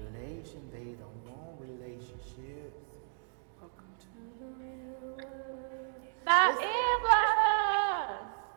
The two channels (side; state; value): left; silent; digital silence